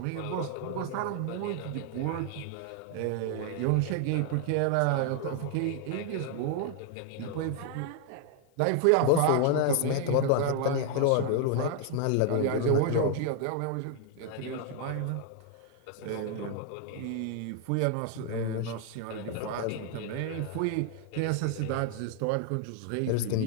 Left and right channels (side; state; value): both; different; correlation 0.00